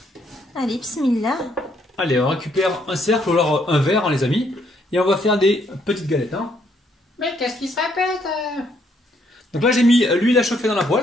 Allez, bismillah. Allez, on récupère un cercle ou alors un verre, hein, les amis. Et on va faire des petites galettes. Hein. Mais qu'est-ce qui se répète Donc là, j'ai mis l'huile à chauffer dans la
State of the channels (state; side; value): normal; both; correlation 0.70